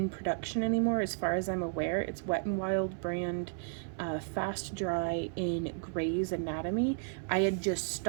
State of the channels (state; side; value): silent; left; 56 dB below the other